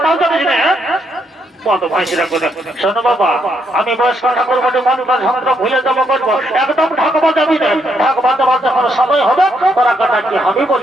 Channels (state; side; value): normal; both; correlation 0.76